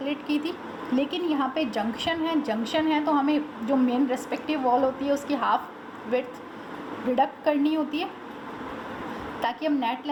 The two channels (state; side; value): identical; both; correlation 1.00